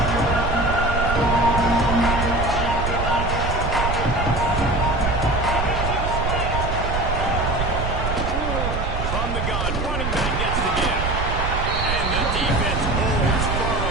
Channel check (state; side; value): noise; right; rumble, 2 dB below the sound